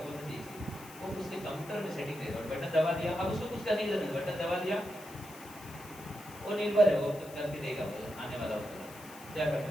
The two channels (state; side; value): noise; left; hiss, 18 dB below the sound